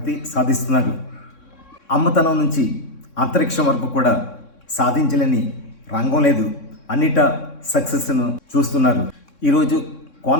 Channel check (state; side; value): late; right; 3.6 ms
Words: సాధిస్తున్నారు. అమ్మతనం నుంచి అంతరిక్షం వరకు కూడా సాధించలేని రంగం లేదు. అన్నిటా సక్సెస్ను చూస్తున్నారు. ఈరోజు